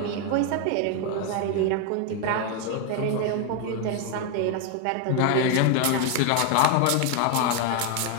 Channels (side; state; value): both; different; correlation 0.01